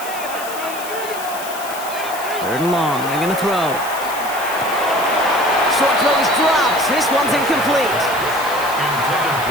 3rd and long. They're going to throw. Short throw is dropped. This one's incomplete.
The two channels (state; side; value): noise; left; hiss, 12 dB below the sound